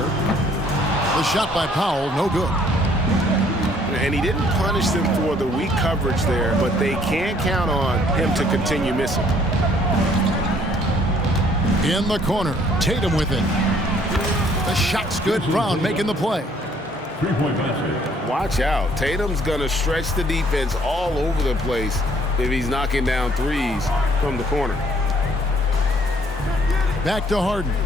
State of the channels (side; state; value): both; normal; correlation 0.62